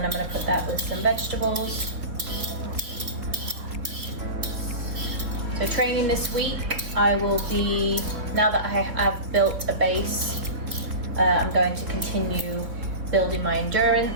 I'm going to put that with some vegetables. So training this week, I will be, now that I have built a base, I'm going to continue building my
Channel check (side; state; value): left; late; 3.7 ms